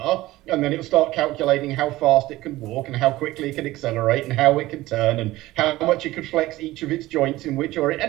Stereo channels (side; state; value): left; quieter; 17.6 dB